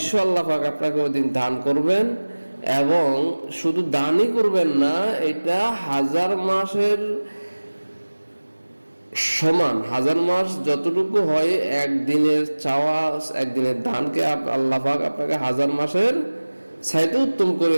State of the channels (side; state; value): both; inverted; correlation -1.00